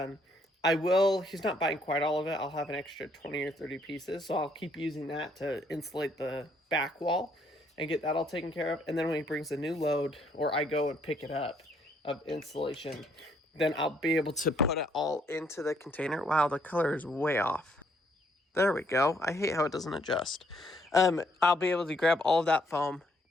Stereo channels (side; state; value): both; normal; correlation 0.69